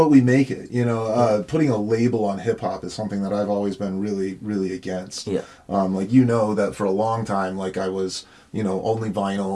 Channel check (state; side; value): identical; both; correlation 1.00